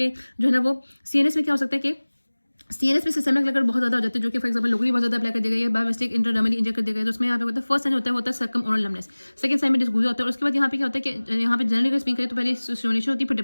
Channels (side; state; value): both; inverted; correlation -1.00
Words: जो है ना वो सीएनएस में क्या हो सकता है कि सीएनएस में सिस्टमिक लेकर बहुत ज़्यादा हो जाते हैं, जो कि फॉर एक्जाम्पल लोकली बहुत ज़्यादा अप्लाई कर दिया गया है, बायोमिस्टिक इंट्राडर्मली इंजेक्ट कर दिया गया है। तो उसमें यहाँ पे होता है फर्स्ट साइन होता है वो होता है circumoral numbness, second sign में डिस्गूजा होता है। और उसके बाद यहाँ पे क्या होता है कि यहाँ पे जनरली अगर स्पीक करें तो पहले स्टिमुलेशन होती है फिर